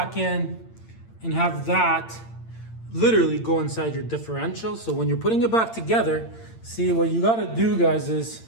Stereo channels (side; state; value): right; late; 8.8 ms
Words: in and have that literally go inside your differential. So when you're putting it back together, see what you got to do, guys, is